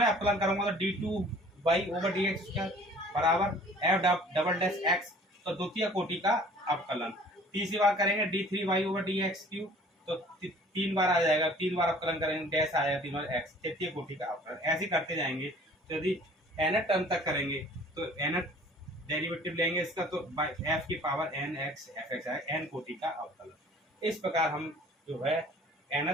अवकलन करूंगा तो d2y/dx बराबर f'(x), तो द्वितीय कोटि का अवकलन। तीसरी बार करेंगे d3y/dx3, तो तीन बार आ जाएगा, तीन बार अवकलन करेंगे डैश आएगा, तीन बार x, तृतीय कोटि का अवकलन। ऐसे करते जाएंगे। तो यदि n टर्म तक करेंगे तो n डेरिवेटिव लेंगे इसका, तो f की पावर nx fx आएगा, n कोटि का अवकलन। इस प्रकार हम जो है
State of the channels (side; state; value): both; normal; correlation 0.51